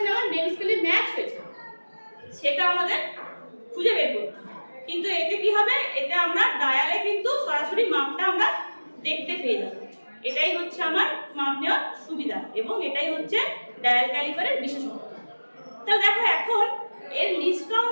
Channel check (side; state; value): both; inverted; correlation -1.00